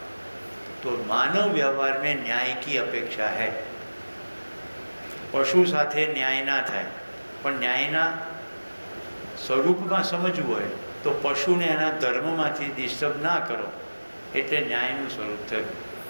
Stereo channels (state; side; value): inverted; both; correlation -1.00